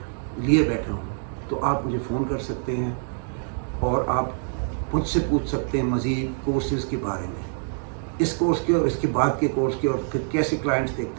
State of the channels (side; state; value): left; silent; 62 dB below the other